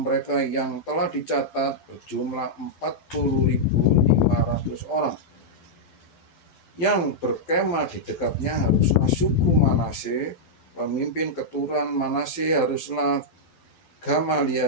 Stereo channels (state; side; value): late; right; 12 ms